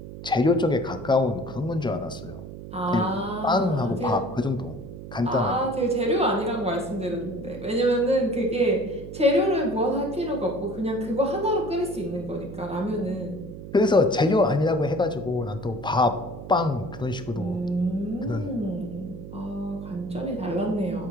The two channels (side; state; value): right; noise; hum, 12 dB below the sound